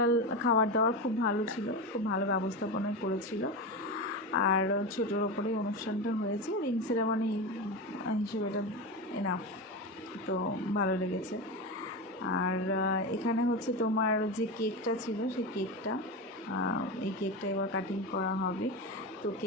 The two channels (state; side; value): normal; both; correlation 0.20